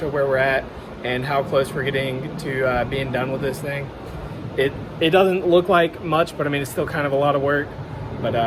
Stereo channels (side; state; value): both; identical; correlation 1.00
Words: where we're at and how close we're getting to being done with this thing. It doesn't look like much, but I mean it's still kind of a lot of work, but